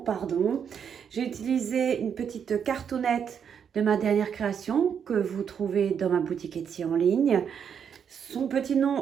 pardon. J'ai utilisé une petite cartonnette de ma dernière création que vous trouvez dans ma boutique Etsy en ligne. Son petit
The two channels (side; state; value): left; quieter; 7.6 dB